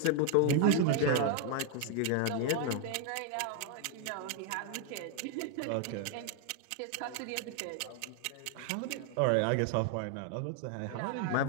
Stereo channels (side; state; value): both; different; correlation 0.00